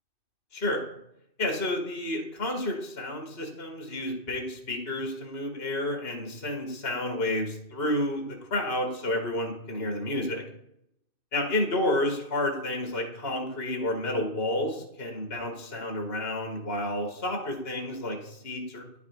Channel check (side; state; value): right; late; 2.6 ms